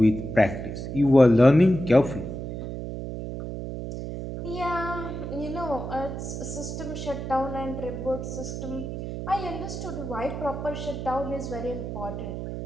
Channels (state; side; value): noise; right; hum, 6 dB below the sound